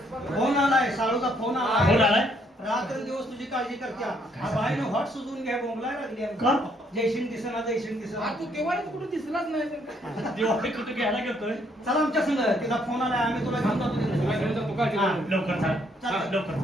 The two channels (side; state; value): both; normal; correlation 0.69